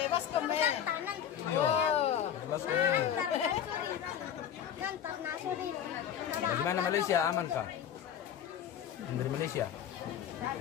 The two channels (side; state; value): right; quieter; 9.4 dB